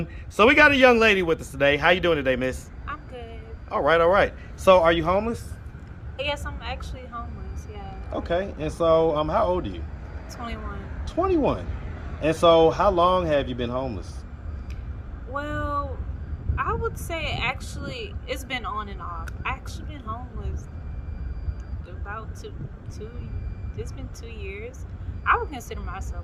So we got a young lady with us today. How you doing today, miss? I'm good. All right, all right. So are you homeless? Yes, I'm actually homeless, yeah. Okay, and so how old are you? 21. 21. And so how long have you been homeless? Well, I would say actually it's been on and off. I actually been homeless about it's been 2 years. I would consider myself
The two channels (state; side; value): identical; both; correlation 1.00